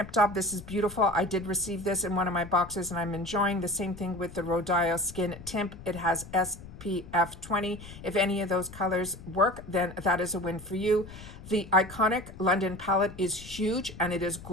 Top, this is beautiful. I did receive this in one of my boxes and I'm enjoying. The same thing with the Rodial Skin Tint. It has SPF 20. If any of those colors work, then that is a win for you. The Iconic London palette is huge and it is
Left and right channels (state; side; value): noise; left; rumble, 15 dB below the sound